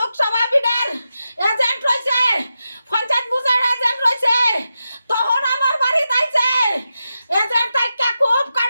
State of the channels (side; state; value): both; inverted; correlation -0.89